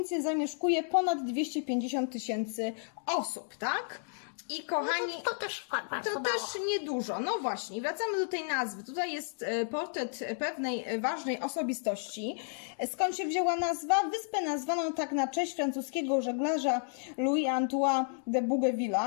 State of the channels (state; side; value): silent; right; digital silence